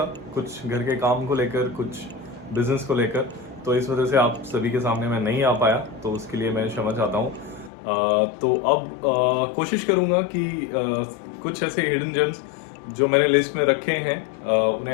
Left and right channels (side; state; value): right; drops out; at 7.7 s